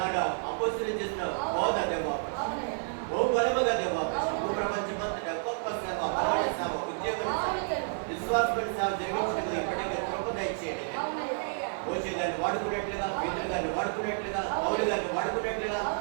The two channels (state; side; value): silent; left; 56 dB below the other